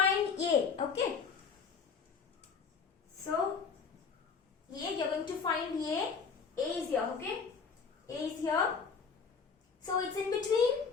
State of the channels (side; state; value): right; quieter; 5.7 dB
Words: A, okay? So, A, you're going to find A. A is here, okay? A is here. So, it's in between.